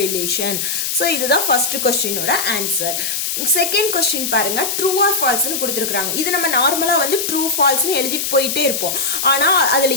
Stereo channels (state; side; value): noise; left; hiss, 1 dB below the sound